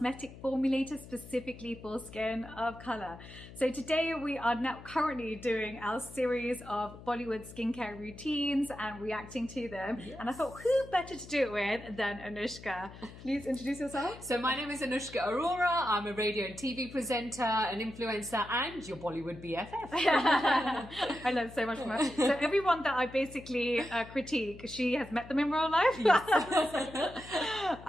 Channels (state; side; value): noise; left; hum, 16 dB below the sound